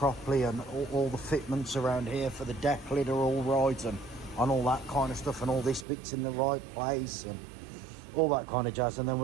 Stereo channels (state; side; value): drops out; left; at 5.9 s